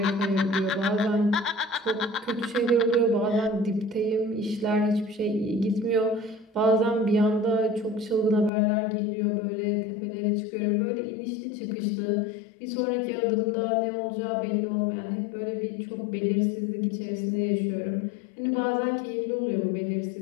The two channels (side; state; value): right; drops out; at 8.5 s